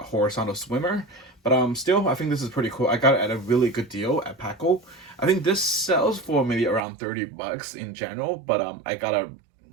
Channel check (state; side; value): drops out; left; at 6.8 s